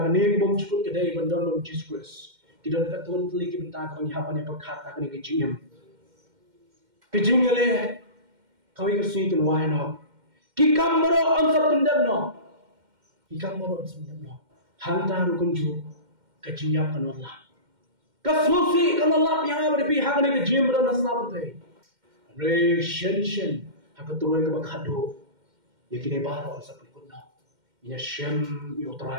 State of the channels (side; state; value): left; late; 2.1 ms